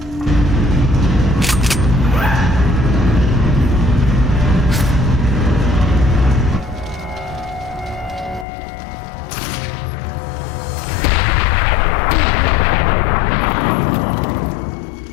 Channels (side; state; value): right; drops out; at 8.5 s